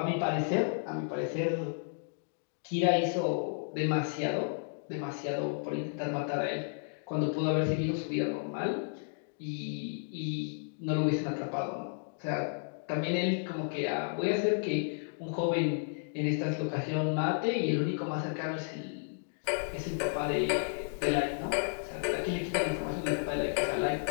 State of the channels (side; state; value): right; silent; digital silence